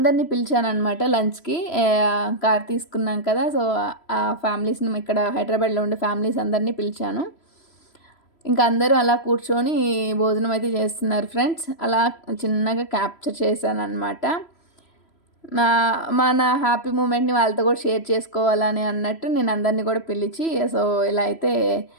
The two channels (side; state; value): right; late; 3.0 ms